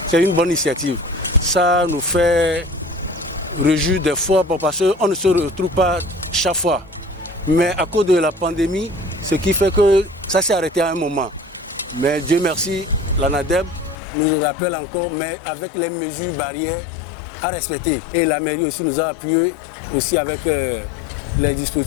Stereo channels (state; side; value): drops out; right; at 14.0 s